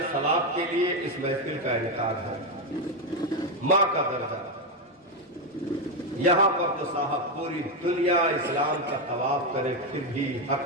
ثواب کے لیے اس محفل کا انعقاد ہے۔ ماں کا درجہ یہاں پر تو صاحب پوری دنیا اسلام کا طواف کرے پھر بھی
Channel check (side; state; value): both; normal; correlation 0.07